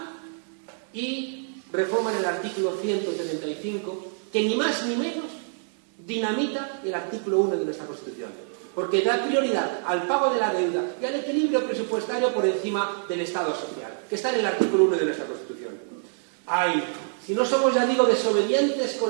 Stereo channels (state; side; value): silent; left; digital silence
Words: y reforman el artículo 135, que ni más ni menos dinamita el artículo 1 de nuestra Constitución, porque da prioridad al pago de la deuda y al equilibrio presupuestario por encima del Estado social, que está en el artículo 1 de nuestra Constitución. ¡Ay! Si no somos, ya digo, desobedientes